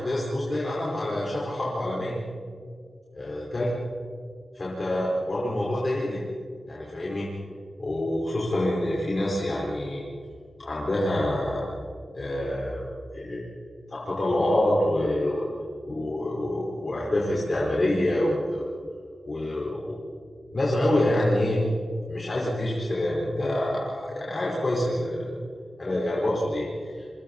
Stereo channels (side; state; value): both; normal; correlation 0.93